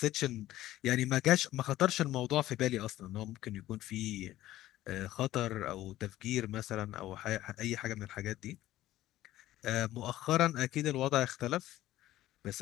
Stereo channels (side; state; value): right; quieter; 14.8 dB